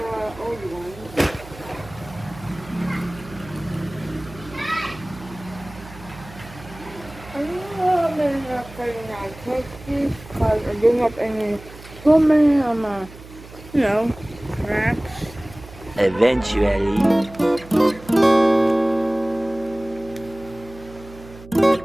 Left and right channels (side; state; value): right; noise; hum, 18 dB below the sound